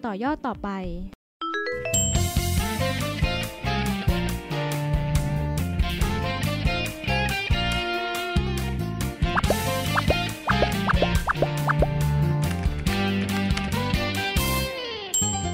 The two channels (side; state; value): both; identical; correlation 1.00